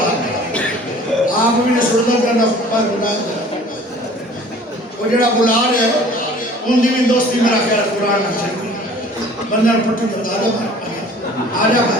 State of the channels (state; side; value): normal; both; correlation 0.49